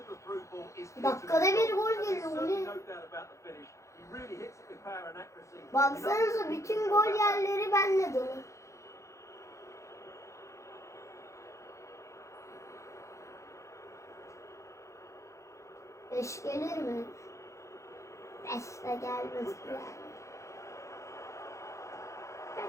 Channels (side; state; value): right; late; 0.15 ms